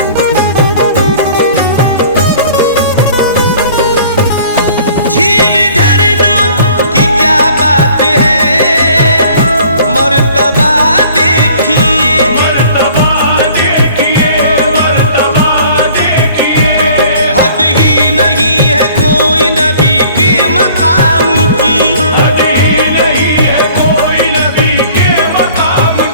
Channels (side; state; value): both; inverted; correlation -0.52